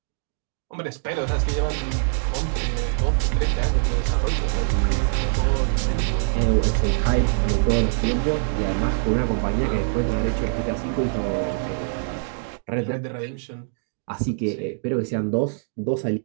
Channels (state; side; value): silent; left; digital silence